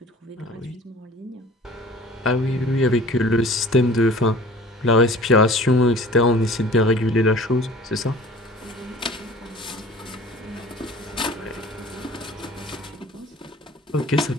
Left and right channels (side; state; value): both; normal; correlation 0.46